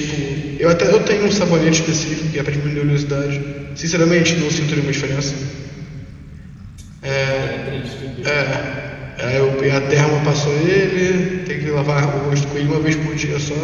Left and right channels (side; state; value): both; identical; correlation 1.00